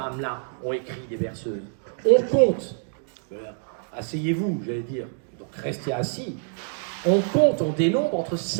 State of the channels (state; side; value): silent; left; digital silence